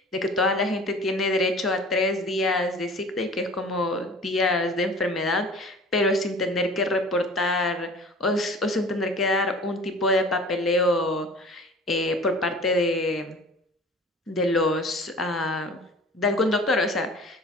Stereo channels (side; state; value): both; normal; correlation 0.43